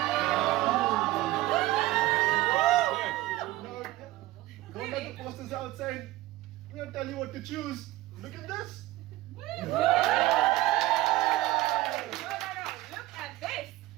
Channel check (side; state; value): left; quieter; 17.3 dB